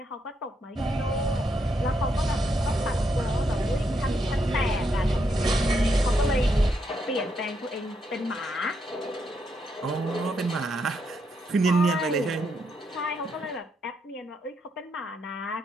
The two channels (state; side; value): normal; both; correlation 0.79